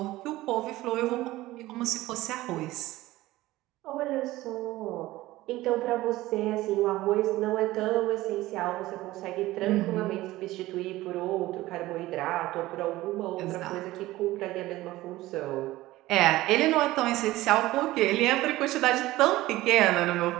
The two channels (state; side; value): quieter; left; 17.4 dB